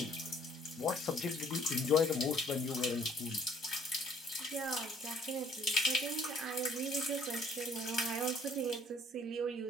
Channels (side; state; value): both; normal; correlation 0.58